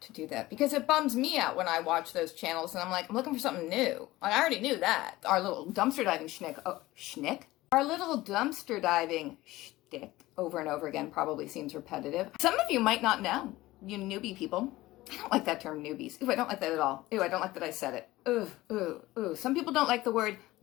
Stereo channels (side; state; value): right; quieter; 18.0 dB